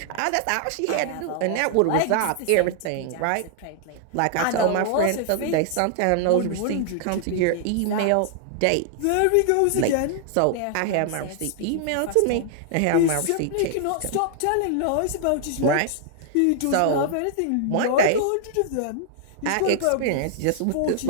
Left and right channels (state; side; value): different; both; correlation -0.01